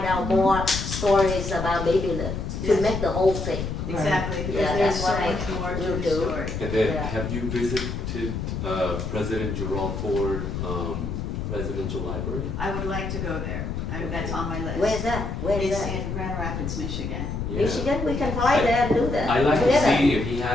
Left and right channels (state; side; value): noise; left; rumble, 4 dB below the sound